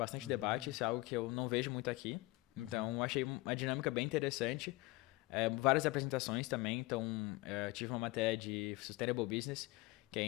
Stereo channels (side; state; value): right; quieter; 21.9 dB